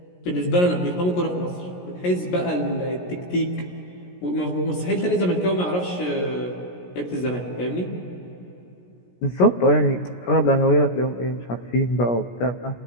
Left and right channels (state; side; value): late; right; 17 ms